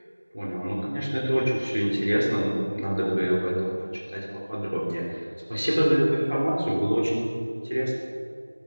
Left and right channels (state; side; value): inverted; both; correlation -1.00